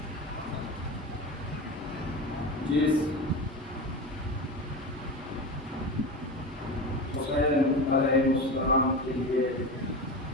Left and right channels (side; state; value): both; normal; correlation 0.26